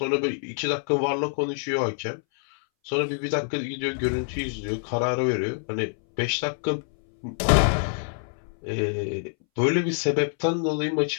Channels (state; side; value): silent; right; 61 dB below the other